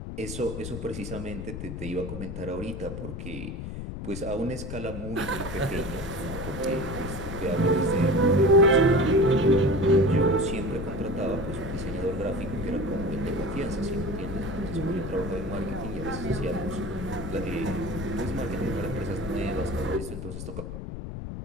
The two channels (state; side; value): noise; left; rumble, 7 dB below the sound